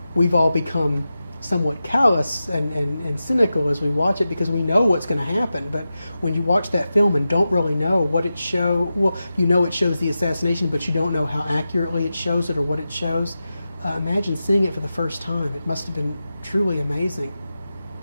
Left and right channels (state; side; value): inverted; both; correlation -0.92